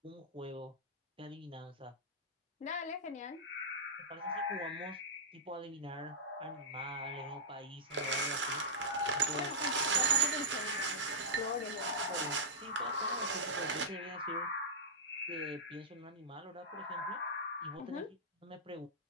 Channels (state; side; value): normal; both; correlation -0.13